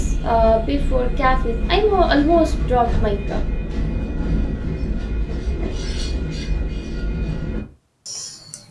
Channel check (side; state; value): both; identical; correlation 1.00